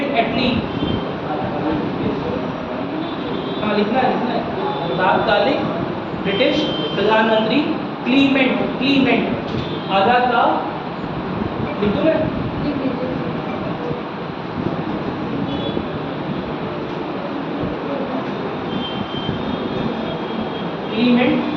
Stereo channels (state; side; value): identical; both; correlation 1.00